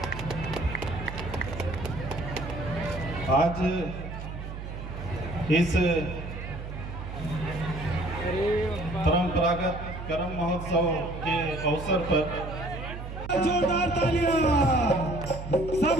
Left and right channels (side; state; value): right; noise; hum, 8 dB below the sound